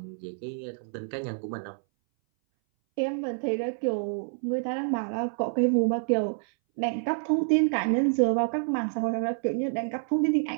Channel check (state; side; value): silent; left; 59 dB below the other